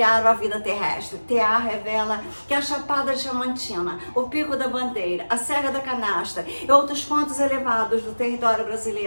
a vida terrestre. TA revela que a Chapada Diamantina, o Pico da Bandeira, a Serra da Canastra e outros pontos elevados do território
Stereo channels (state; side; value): inverted; both; correlation -1.00